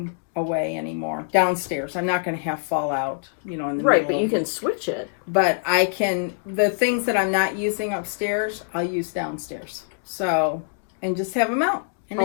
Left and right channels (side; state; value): right; silent; digital silence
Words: away anymore downstairs. I'm not going to have fallout, in the right, middle but you can switch it. But I can, the things that I'm not using upstairs, I'll use downstairs. So, and just have them out and